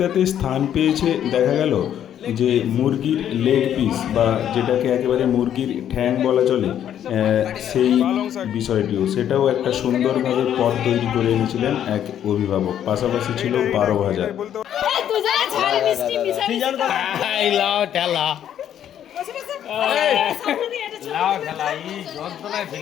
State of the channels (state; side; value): quieter; right; 10.2 dB